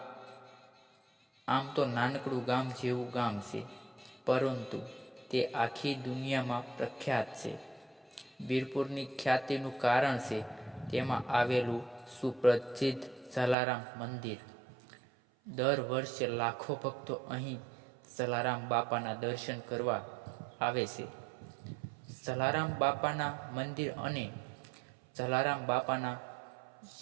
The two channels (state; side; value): drops out; left; at 13.6 s